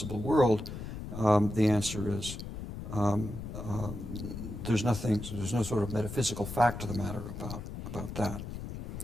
world, the answer is there's no sort of metaphysical fact to the matter about that.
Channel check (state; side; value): noise; left; rumble, 8 dB below the sound